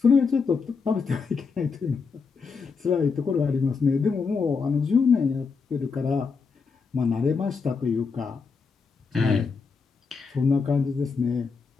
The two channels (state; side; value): quieter; right; 5.1 dB